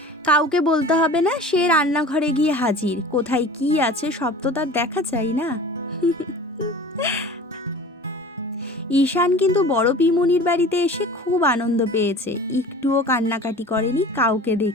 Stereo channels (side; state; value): both; normal; correlation 0.40